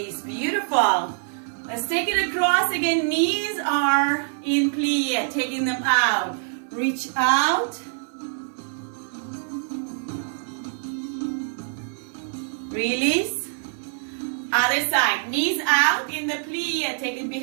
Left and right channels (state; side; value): silent; left; 56 dB below the other